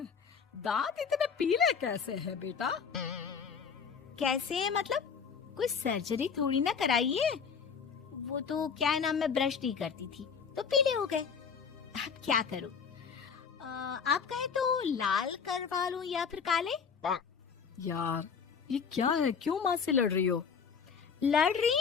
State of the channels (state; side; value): quieter; right; 6.2 dB